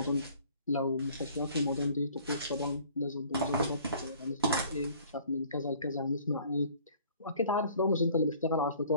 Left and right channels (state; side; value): inverted; both; correlation -0.54